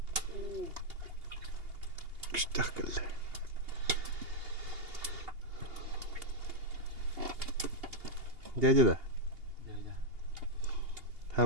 Күштак келди. Дядя да.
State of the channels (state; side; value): late; left; 2.8 ms